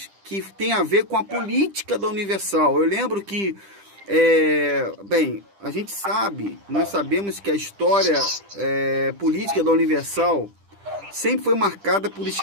que tem a ver com a política da Universal. Eu lembro que, a gente sabe, nós sabemos que a história política da Universal sempre foi marcada por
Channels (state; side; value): late; left; 10 ms